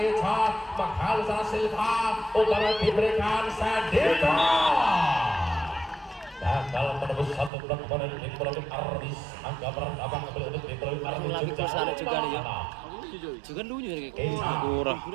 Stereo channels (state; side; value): drops out; left; at 7.5 s